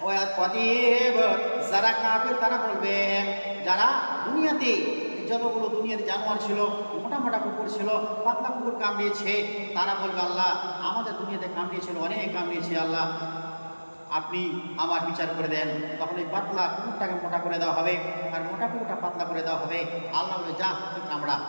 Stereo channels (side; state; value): both; inverted; correlation -1.00